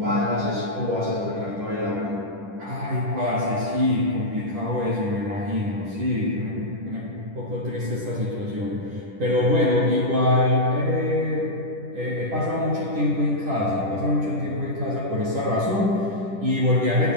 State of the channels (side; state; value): left; late; 10 ms